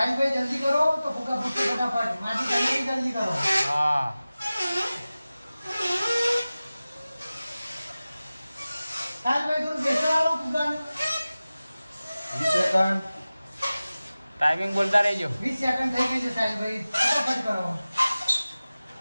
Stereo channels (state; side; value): inverted; both; correlation -0.97